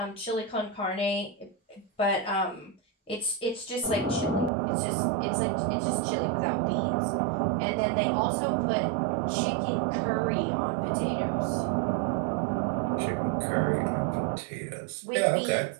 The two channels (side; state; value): left; drops out; at 4.5 s